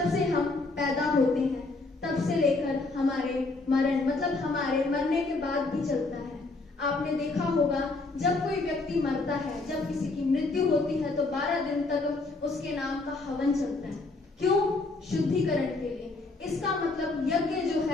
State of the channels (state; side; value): quieter; right; 3.4 dB